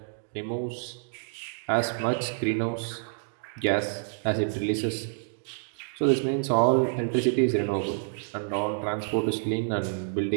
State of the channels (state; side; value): silent; left; digital silence